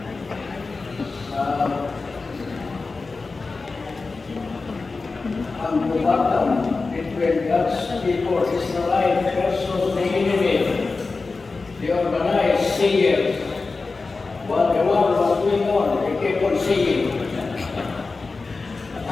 Ang bumatang between God's people, Israelite versus the enemy, the organized singers. While the war was going on, they kept on singing.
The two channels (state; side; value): quieter; right; 4.0 dB